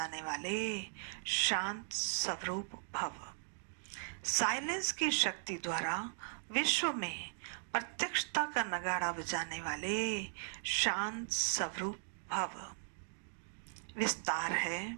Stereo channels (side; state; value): left; silent; digital silence